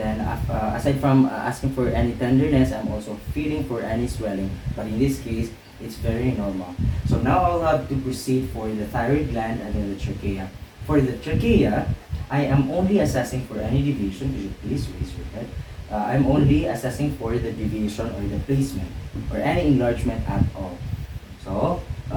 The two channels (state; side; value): identical; both; correlation 1.00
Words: aside from asking for any tenderness, I'm also feeling for any swelling. But in this case, it's very normal. So now I'll have to proceed for the thyroid gland and then the trachea. For the trachea, I am only assessing for any deviation. Could you please raise your head? I'm only assessing for the deviation or the placement or any enlargement at all. So,